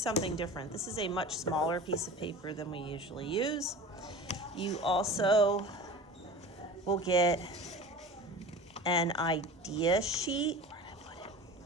different. This is a much smaller piece of paper than we usually use. You also will get an idea sheet.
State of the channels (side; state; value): both; normal; correlation 0.36